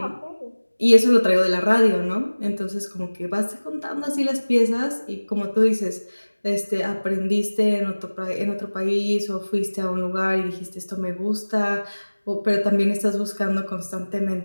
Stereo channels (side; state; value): both; inverted; correlation -1.00